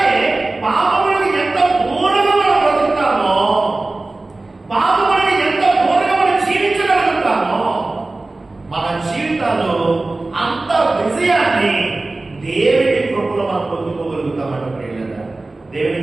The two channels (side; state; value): left; quieter; 3.1 dB